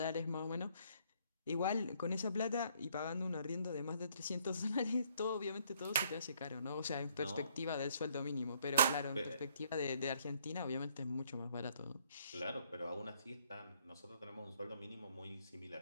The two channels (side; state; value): both; inverted; correlation -0.66